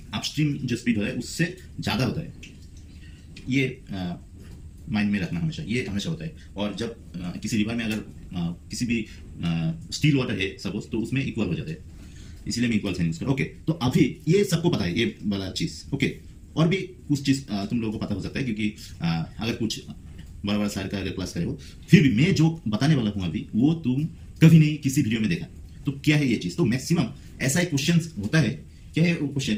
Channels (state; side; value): identical; both; correlation 1.00